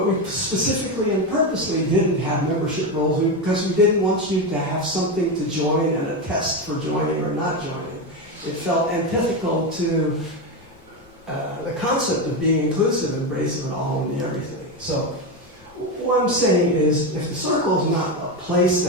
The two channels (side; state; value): left; noise; rumble, 29 dB below the sound